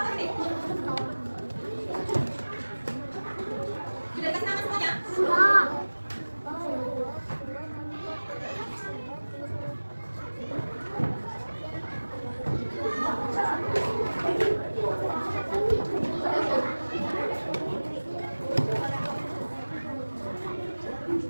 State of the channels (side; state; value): both; inverted; correlation -1.00